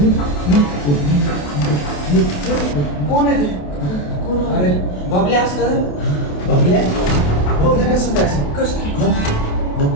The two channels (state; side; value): late; right; 28 ms